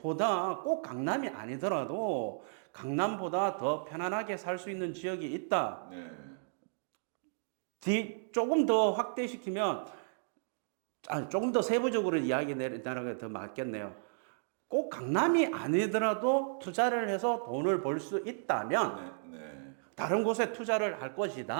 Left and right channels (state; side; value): silent; left; digital silence